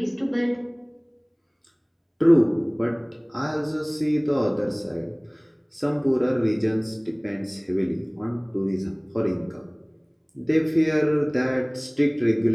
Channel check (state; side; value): identical; both; correlation 1.00